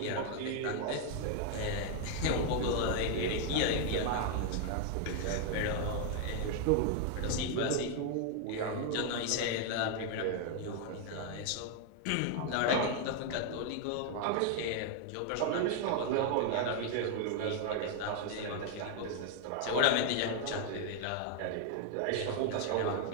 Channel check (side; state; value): both; different; correlation 0.00